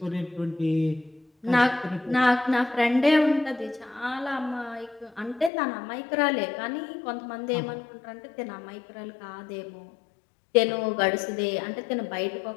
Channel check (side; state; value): right; drops out; at 5.5 s